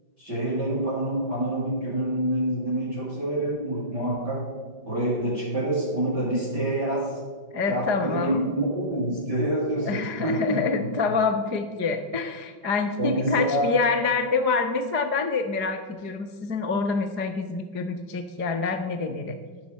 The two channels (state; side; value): late; left; 4.9 ms